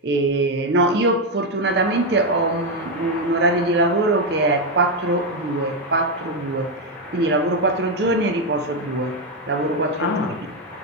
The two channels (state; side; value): normal; both; correlation 0.06